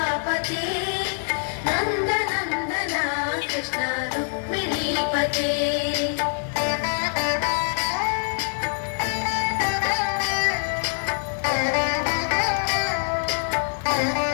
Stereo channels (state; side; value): silent; right; digital silence